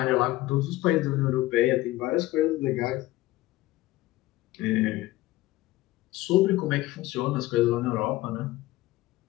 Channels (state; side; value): quieter; right; 17.5 dB